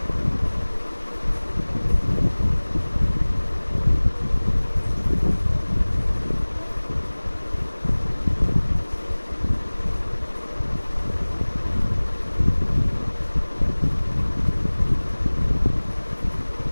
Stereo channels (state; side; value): inverted; both; correlation -1.00